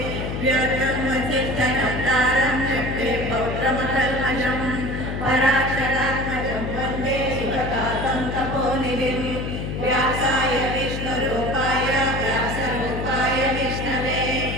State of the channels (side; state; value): left; noise; hum, 4 dB below the sound